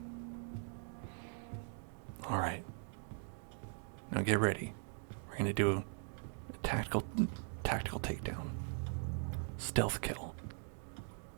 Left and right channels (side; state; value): left; silent; 50 dB below the other